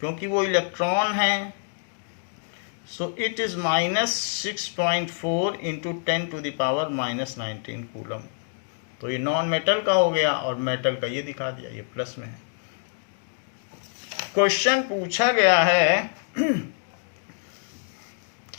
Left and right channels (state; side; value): silent; right; digital silence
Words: क्योंकि वो इलेक्ट्रॉन है। So it is -6.4 into 10 to the power -19 coulomb. तो ये नॉन मेटल का हो गया और मेटल का ये दिखा दिया, ये प्लस में है। क्वेश्चन पूछा गया है,